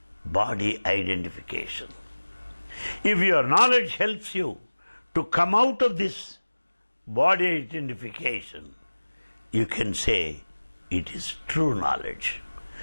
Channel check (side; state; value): both; inverted; correlation -1.00